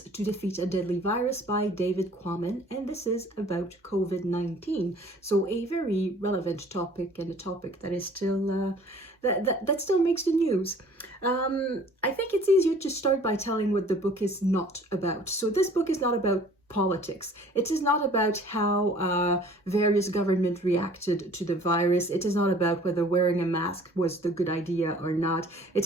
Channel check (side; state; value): both; normal; correlation 0.52